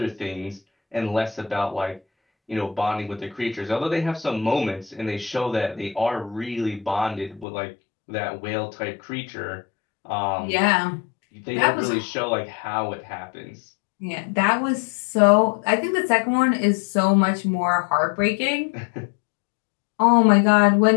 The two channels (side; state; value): right; drops out; at 7.5 s